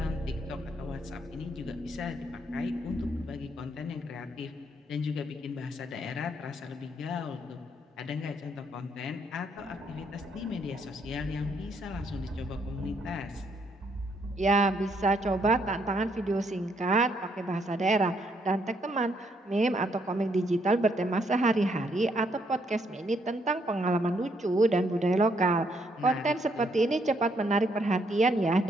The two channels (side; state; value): both; normal; correlation 0.72